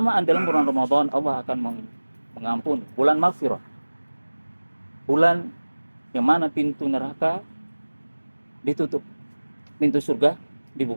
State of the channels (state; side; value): inverted; both; correlation -1.00